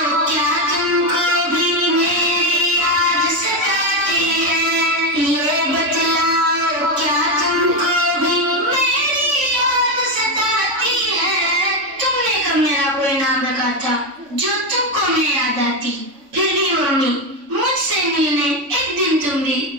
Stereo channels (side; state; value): left; late; 3.5 ms